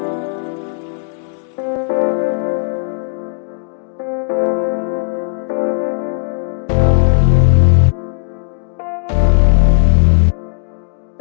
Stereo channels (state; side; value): silent; right; digital silence